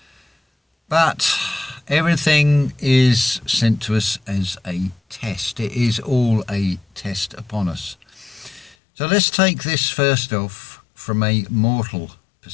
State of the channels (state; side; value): drops out; right; at 8.8 s